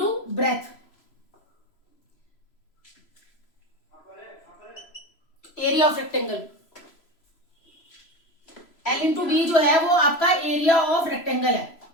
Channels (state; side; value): late; right; 3.0 ms